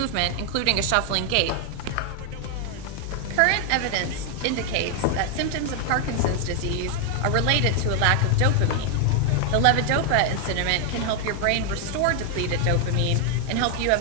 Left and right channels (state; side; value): different; both; correlation 0.00